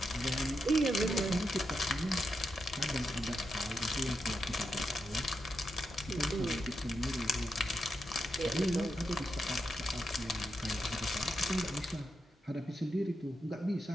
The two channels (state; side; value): normal; both; correlation 0.85